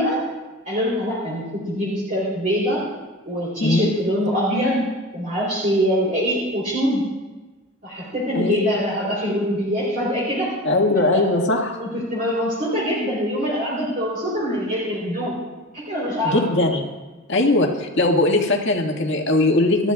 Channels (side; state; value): both; normal; correlation 0.29